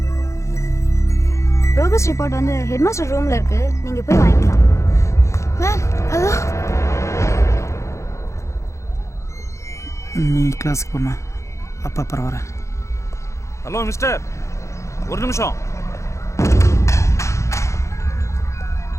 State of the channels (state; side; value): late; right; 0.14 ms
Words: ப்ரோக்ரஸ் ரிப்போர்ட் வந்து ஹெட்மாஸ்டர் ரூம்ல இருக்கு, நீங்க போய் வாங்கிக்கலாம். Ma'am hello. நீ கிளாஸுக்கு போமா, அப்பா அப்புறம் வரேன். ஹலோ மிஸ்டர், ஒரு நிமிஷம்.